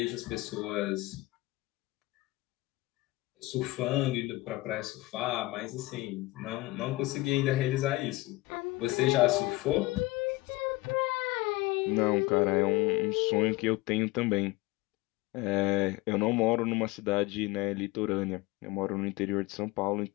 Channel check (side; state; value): right; quieter; 20.7 dB